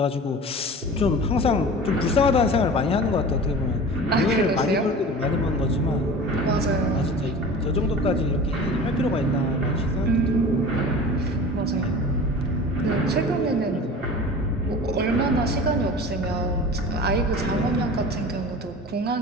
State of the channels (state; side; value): normal; both; correlation 0.37